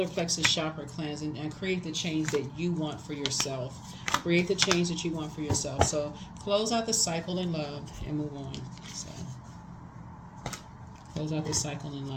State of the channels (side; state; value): both; identical; correlation 1.00